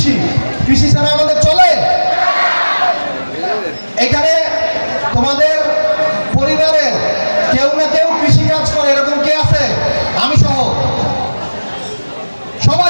কৃষি ছাড়া আমাদের চলে? এখানে তোমাদের পরিবারের কেউ না কেউ কৃষি কাজ করে, এরকম কে আছে? আমি সহ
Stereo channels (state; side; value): inverted; both; correlation -1.00